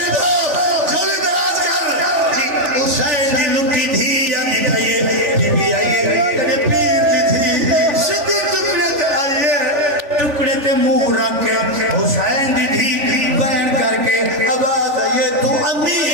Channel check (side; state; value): left; late; 3.4 ms